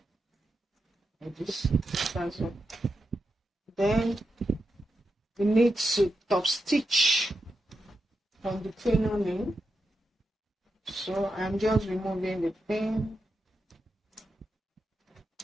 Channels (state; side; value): normal; both; correlation 0.87